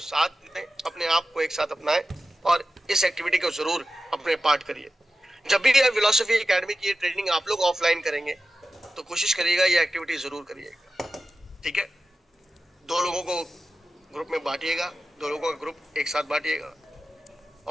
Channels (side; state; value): both; normal; correlation 0.93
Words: साथ दें, अपने आप को एक साथ अपनाएं और इस एक्टिविटी को जरूर अपने पार्ट करिए। जब भी ये फिलॉसफी एकेडमी की ट्रेनिंग आप लोग ऑफलाइन करेंगे तो कोशिश करिएगा ये एक्टिविटी जरूर करिएगा, ठीक है? 2 लोगों को ग्रुप में बांटिएगा, 2 लोगों का ग्रुप एक साथ बांटिएगा